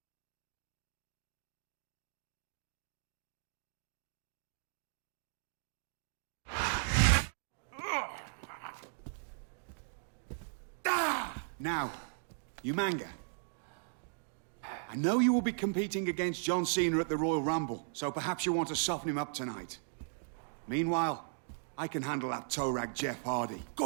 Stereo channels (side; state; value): left; silent; digital silence